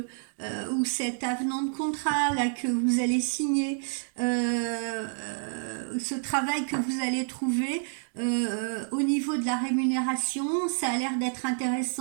cet avenant de contrat là que vous allez signer, ce travail que vous allez trouver au niveau de la rémunération, ça a l'air d'être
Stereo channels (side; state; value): left; silent; 59 dB below the other